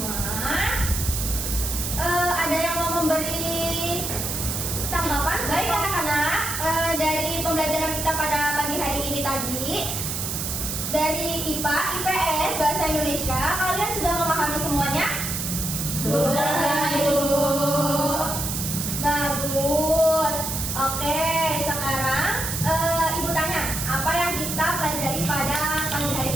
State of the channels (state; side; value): noise; right; hiss, 3 dB below the sound